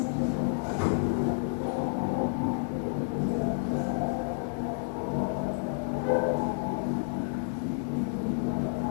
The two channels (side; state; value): right; silent; 58 dB below the other